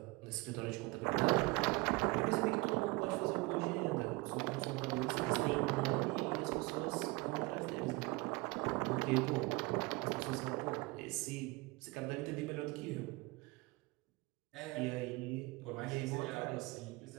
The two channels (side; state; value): left; quieter; 24.0 dB